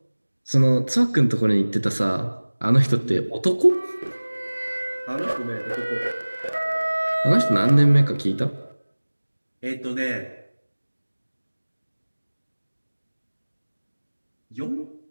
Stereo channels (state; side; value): inverted; both; correlation -1.00